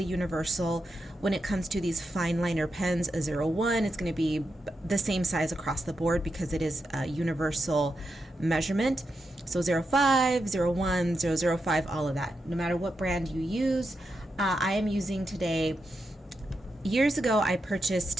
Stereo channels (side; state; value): both; normal; correlation 0.86